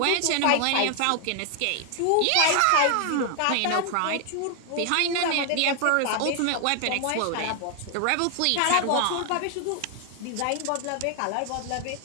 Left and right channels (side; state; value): both; different; correlation 0.00